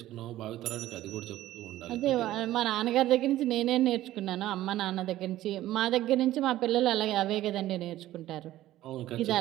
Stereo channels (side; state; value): left; quieter; 14.6 dB